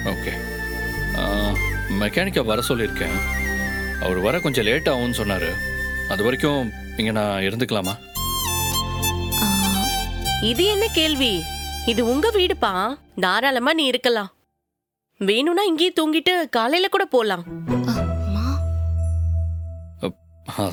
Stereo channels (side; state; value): both; identical; correlation 1.00